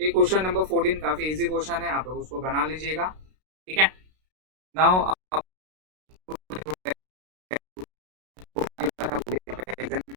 क्वेश्चन नंबर 14 काफी इजी क्वेश्चन है, आप लोग उसको बना लीजिएगा। ठीक है, नाउ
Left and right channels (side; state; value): left; late; 32 ms